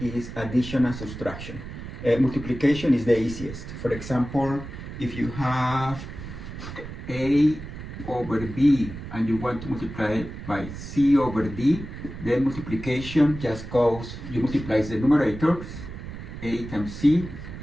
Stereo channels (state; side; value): noise; right; rumble, 10 dB below the sound